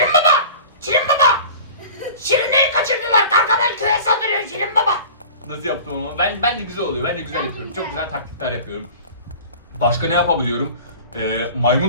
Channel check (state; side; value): inverted; both; correlation -0.40